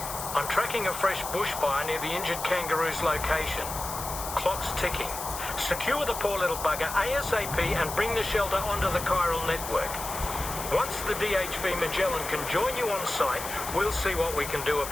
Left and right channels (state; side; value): noise; left; hiss, 8 dB below the sound